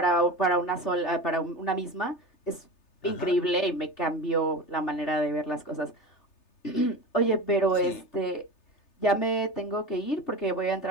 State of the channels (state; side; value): late; right; 3.3 ms